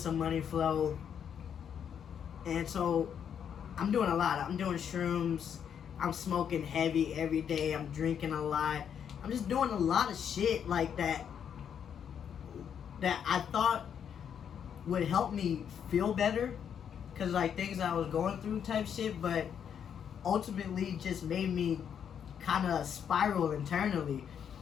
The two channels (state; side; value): quieter; right; 8.2 dB